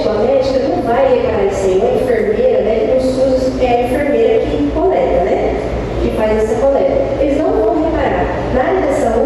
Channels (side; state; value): both; identical; correlation 1.00